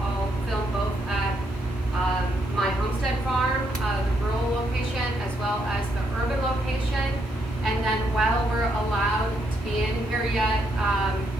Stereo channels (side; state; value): both; normal; correlation 0.77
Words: film both at my homestead farm, the rural location, as well as the urban location. And then while we're allowed to be in here yet,